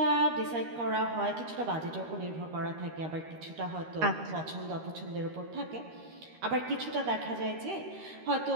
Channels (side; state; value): left; late; 13 ms